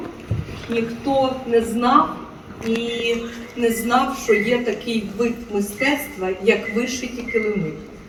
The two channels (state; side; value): identical; both; correlation 1.00